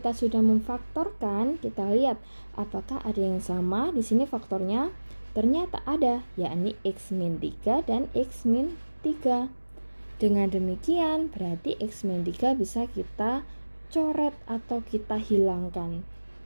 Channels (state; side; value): inverted; both; correlation -1.00